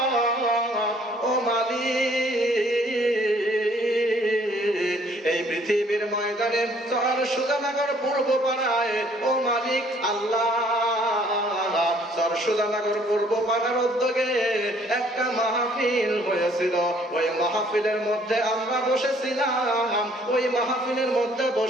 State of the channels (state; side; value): normal; both; correlation 0.60